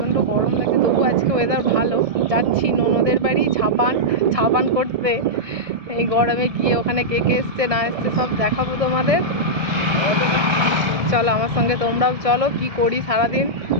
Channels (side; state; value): left; late; 1.7 ms